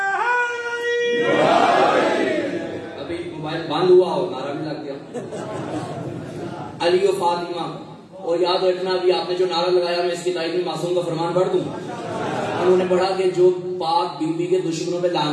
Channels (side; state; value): both; identical; correlation 1.00